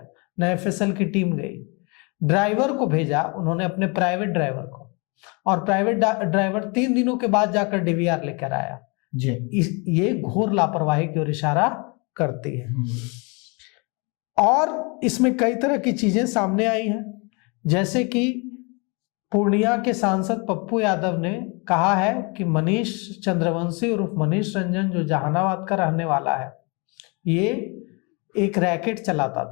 न एफएसएल की टीम गई। ड्राइवर को भेजा उन्होंने, अपने प्राइवेट ड्राइवर को, और प्राइवेट ड्राइवर 3 दिनों के बाद जाकर डीवीआर लेकर आया जी। ये घोर लापरवाही की ओर इशारा करती है। और इसमें कई तरह की चीजें सामने आई हैं, जैसे कि पूर्णिया के सांसद पप्पू यादव ने कहा है कि मनीष चंद्रवंशी उर्फ मनीष रंजन जो जहानाबाद का रहने वाला है, ये एक रैकेट चलाता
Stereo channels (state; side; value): quieter; right; 31.1 dB